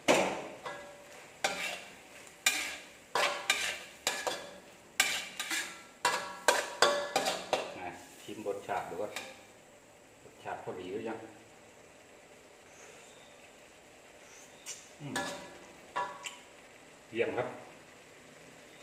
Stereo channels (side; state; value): both; identical; correlation 1.00